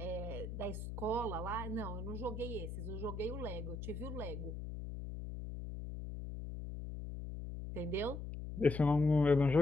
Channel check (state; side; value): noise; left; hum, 7 dB below the sound